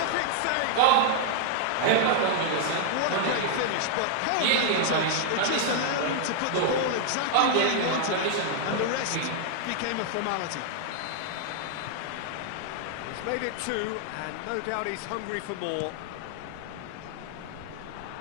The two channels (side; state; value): both; different; correlation 0.00